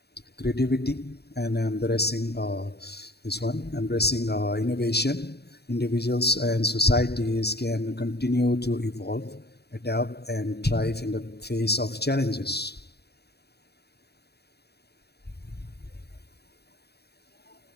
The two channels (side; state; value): right; late; 0.48 ms